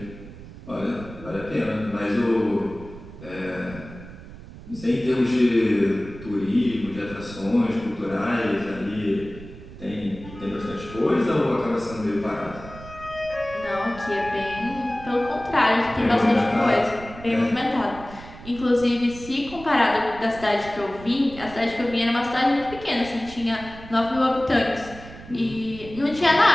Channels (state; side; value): noise; right; rumble, 16 dB below the sound